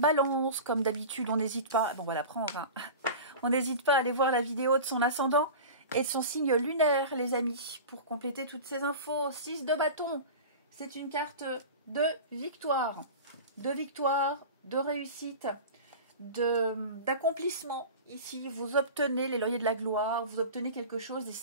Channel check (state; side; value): inverted; both; correlation -0.33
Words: comme d'habitude, on n'hésite pas, bon, on va la prendre, hein. On n'hésite pas à aller voir la vidéo de son ascendant et de son signe lunaire, les amis, pour compléter toutes ces infos. 6 de bâton, c'est une carte de victoire, de réussite, d'accomplissement. Ici, vous obtenez les lauriers de la gloire, vous obtenez quelque chose et